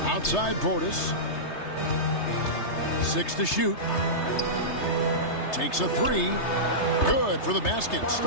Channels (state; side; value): late; right; 3.3 ms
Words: Outside Portis. 6 to shoot. Takes a 3. Good for the basket.